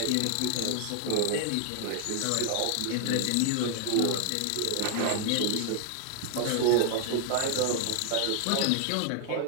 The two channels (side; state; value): both; different; correlation 0.00